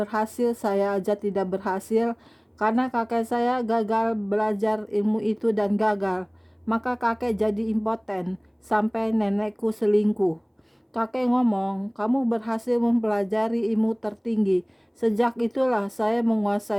saya aja tidak berhasil. Karena kakek saya gagal belajar ilmu itu dan gagal. Maka kakek jadi impoten sampai nenekku selingkuh. Kakek ngomong, kamu berhasil mempelajari ilmu tertinggi. Sejak itulah saya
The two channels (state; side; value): identical; both; correlation 1.00